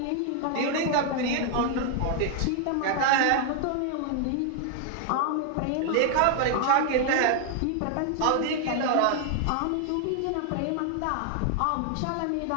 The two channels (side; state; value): both; different; correlation 0.00